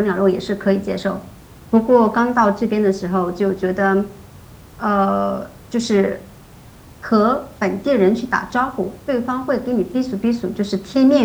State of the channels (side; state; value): both; identical; correlation 1.00